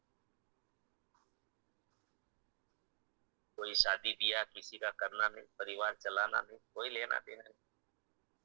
कोई शादी ब्याह किसी का करना नहीं, परिवार चलाना नहीं, कोई लेना देना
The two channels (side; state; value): left; silent; digital silence